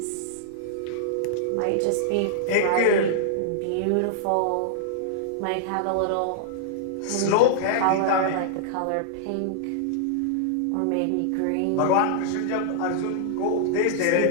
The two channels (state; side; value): different; both; correlation -0.01